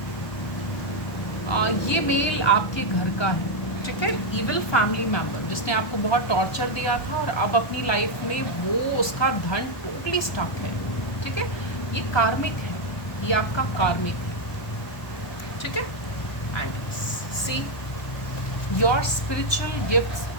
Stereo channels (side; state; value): right; late; 1.3 ms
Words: ये मेल आपके घर का है। ठीक है, इविल फैमिली मेंबर जिसने आपको बहुत टॉर्चर दिया था और अब अपनी लाइफ में वो उसका धन टोटली स्टक है। ठीक है, ये कार्मिक है, ये आपका कार्मिक है। ठीक है, and see your spiritual gifts